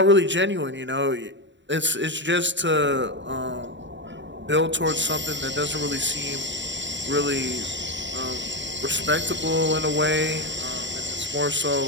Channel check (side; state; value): left; late; 0.53 ms